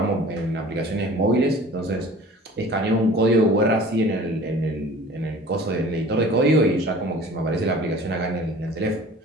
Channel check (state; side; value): normal; both; correlation 0.45